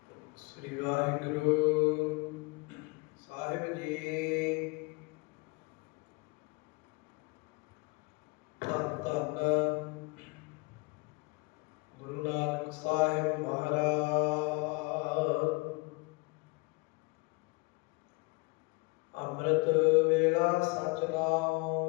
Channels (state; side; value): quieter; right; 28.2 dB